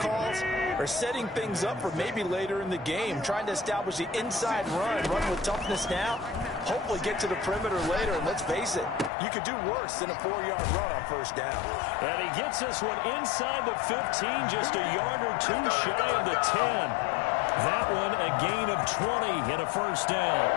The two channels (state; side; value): drops out; right; at 9.1 s